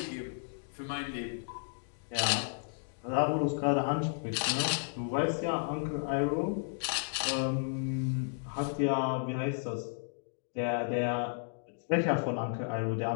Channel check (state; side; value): silent; right; digital silence